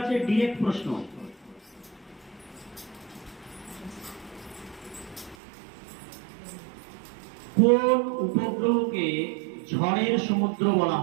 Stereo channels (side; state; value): left; drops out; at 5.4 s